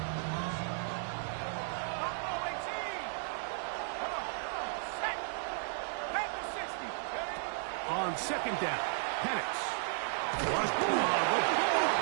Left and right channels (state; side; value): silent; left; digital silence